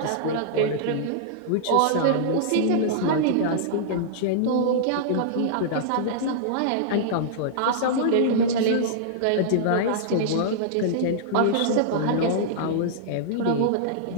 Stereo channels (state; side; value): different; both; correlation -0.02